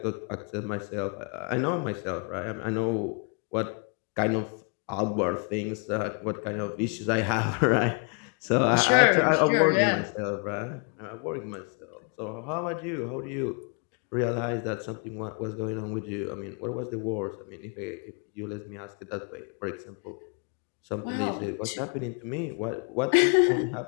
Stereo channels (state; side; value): quieter; right; 39.1 dB